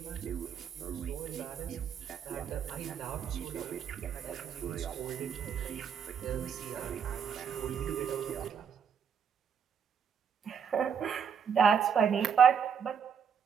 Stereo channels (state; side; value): quieter; left; 7.3 dB